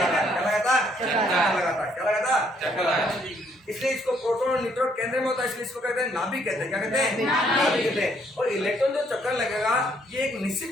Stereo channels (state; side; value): normal; both; correlation 0.68